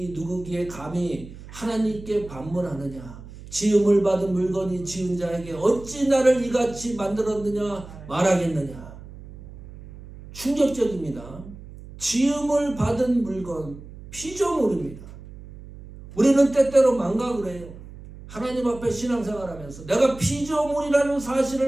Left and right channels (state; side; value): noise; right; hum, 16 dB below the sound